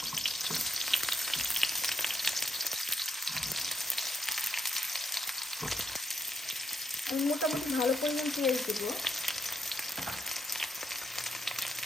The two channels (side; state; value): both; normal; correlation 0.79